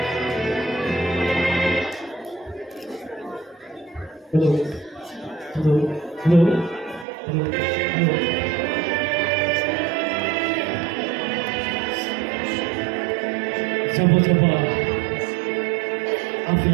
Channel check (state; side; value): drops out; left; at 7.1 s